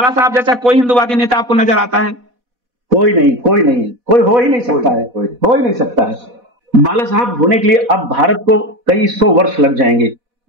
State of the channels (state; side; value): late; left; 4.1 ms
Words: साहब जैसा कोई हिंदूवादी नेता आपको नजर आता है? कोई नहीं, कोई हो ही नहीं सकता है, हो ही नहीं सकता है। बाला साहब होने के लिए अब भारत को कई 100 वर्ष लग जाएंगे,